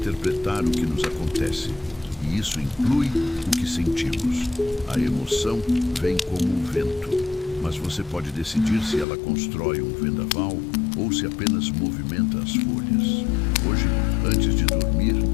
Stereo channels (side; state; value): right; drops out; at 9.1 s